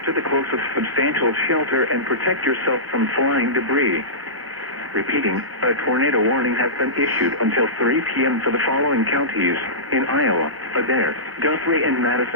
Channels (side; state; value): left; late; 1.0 ms